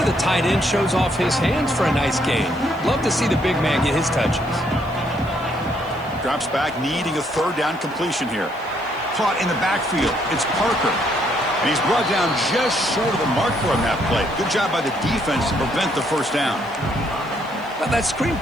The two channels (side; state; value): left; noise; hiss, 28 dB below the sound